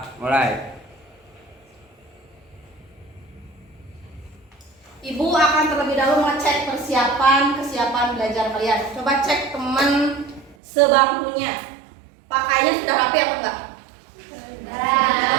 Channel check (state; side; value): drops out; left; at 10.6 s